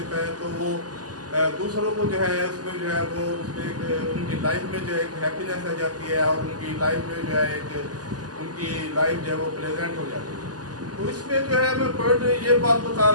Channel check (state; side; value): late; left; 0.68 ms